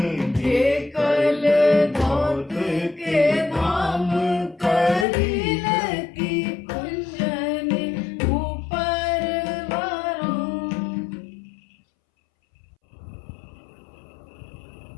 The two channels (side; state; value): right; drops out; at 5.1 s